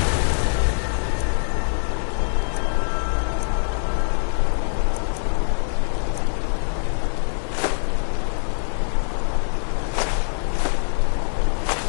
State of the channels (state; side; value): silent; right; digital silence